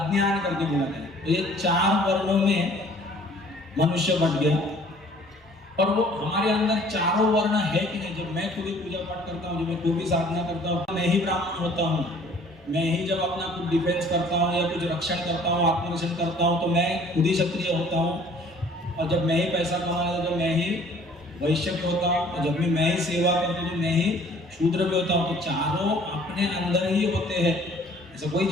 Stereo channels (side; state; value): both; normal; correlation 0.54